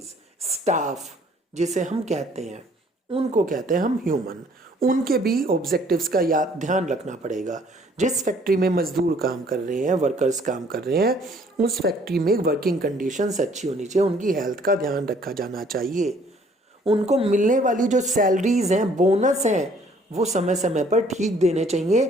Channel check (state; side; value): normal; both; correlation 0.60